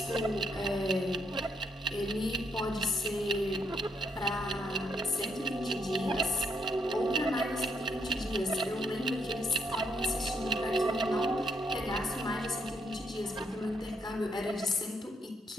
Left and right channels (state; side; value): normal; both; correlation 0.74